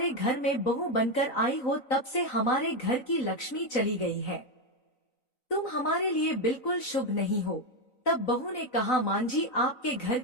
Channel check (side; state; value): right; late; 3.9 ms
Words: घर में बहू बनकर आई हो तब से हमारे घर की लक्ष्मी चली गई है। तुम हमारे लिए बिल्कुल शुभ नहीं हो। तब बहू ने कहा, मां जी, आपके घर